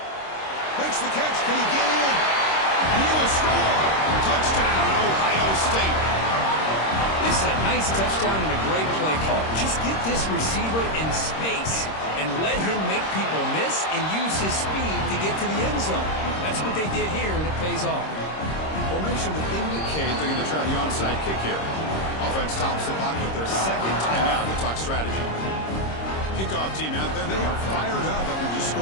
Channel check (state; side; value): late; right; 26 ms